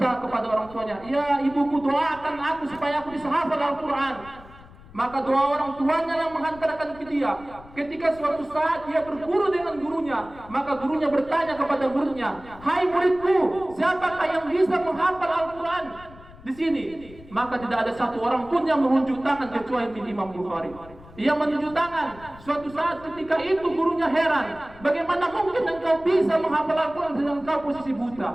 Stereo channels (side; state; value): left; noise; rumble, 20 dB below the sound